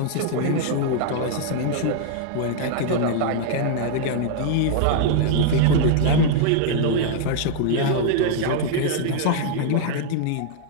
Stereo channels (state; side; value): different; both; correlation -0.01